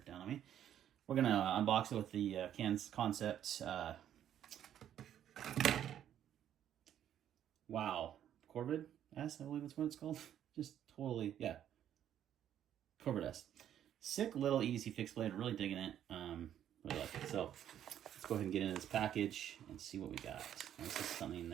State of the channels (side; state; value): left; quieter; 10.5 dB